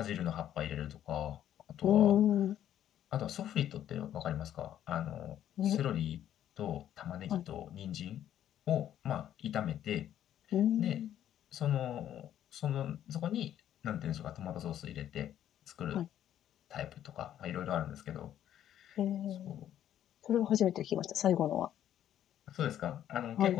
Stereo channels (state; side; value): quieter; right; 11.0 dB